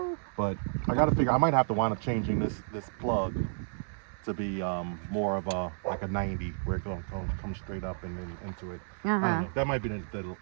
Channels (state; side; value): silent; left; digital silence